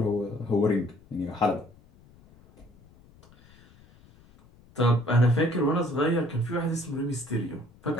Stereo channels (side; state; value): left; noise; rumble, 27 dB below the sound